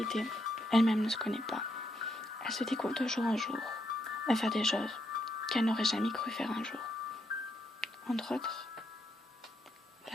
elle-même ne se connaît pas. Elle se découvre de jour en jour à faire des choses qu'elle n'aurait jamais cru faire un jour. Entre autres,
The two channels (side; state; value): both; normal; correlation 0.78